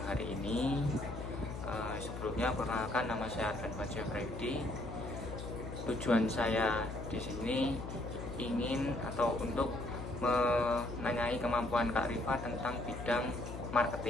hari ini. Sebelumnya, perkenalkan nama saya Arfan Fajar Freddy. Tujuan saya di sini ingin atau untuk menanyai kemampuan Kak Arifah tentang bidang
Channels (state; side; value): noise; left; hum, 8 dB below the sound